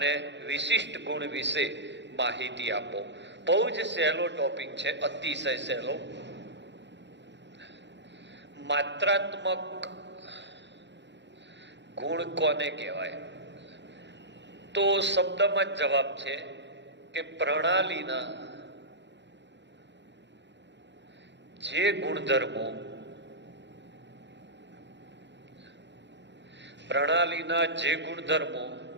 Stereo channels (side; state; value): left; late; 0.52 ms